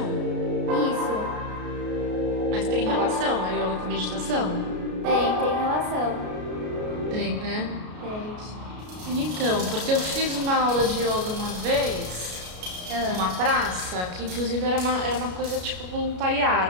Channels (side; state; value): left; late; 33 ms